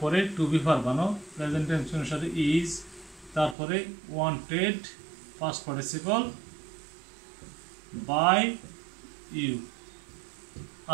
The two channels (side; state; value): left; drops out; at 3.6 s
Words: টু বি ভার্ব বানাও, প্রেজেন্ট টেন্স অনুসারে ইজ, তারপরে wanted past participle by you.